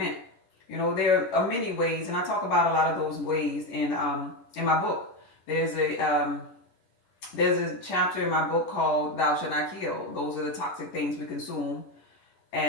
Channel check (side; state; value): right; late; 10 ms